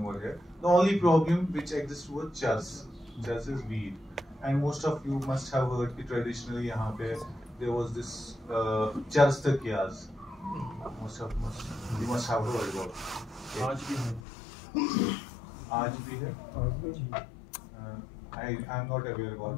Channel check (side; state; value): right; drops out; at 14.2 s